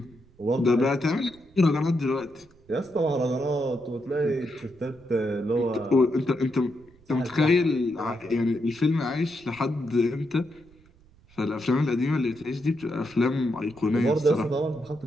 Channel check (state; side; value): noise; right; rumble, 28 dB below the sound